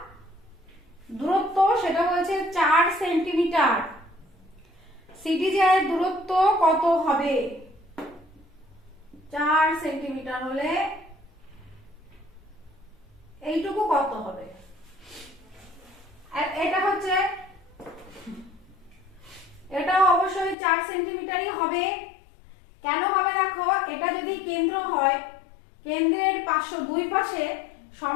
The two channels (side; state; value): right; drops out; at 20.6 s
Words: দূরত্ব, সেটা হচ্ছে 4 সেন্টিমিটার। সিডি জ্যায়ের দূরত্ব কত হবে, 4 সেন্টিমিটার হলে এইটুকু কত হবে। এটা হচ্ছে, এটাও অবশ্যই 4 সেন্টিমিটারই হবে। কেন হবে দেখো, এটা যদি কেন্দ্র হয়, কেন্দ্রের দুই পাশে